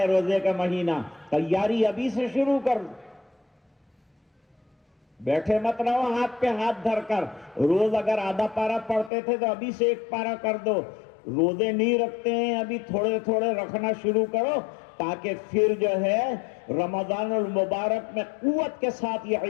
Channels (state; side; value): drops out; right; at 9.1 s